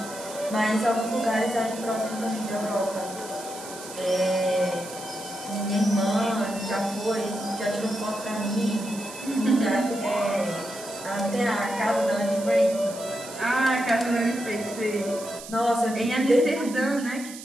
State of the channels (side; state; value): right; noise; hiss, 14 dB below the sound